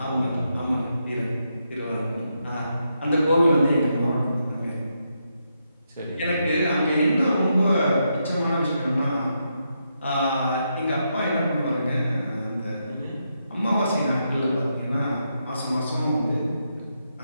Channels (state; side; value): inverted; both; correlation -0.82